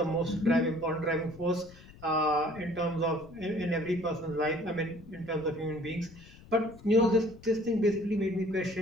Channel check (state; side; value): noise; left; rumble, 21 dB below the sound